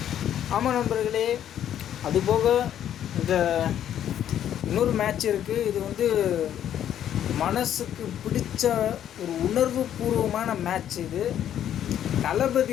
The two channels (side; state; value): right; quieter; 10.5 dB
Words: ஆமாம் நண்பர்களே, அதுபோக இந்த இன்னொரு மேட்ச் இருக்குது. இது வந்து மனசுக்கு பிடிச்ச ஒரு உணர்வு பூர்வமான மேட்ச். இது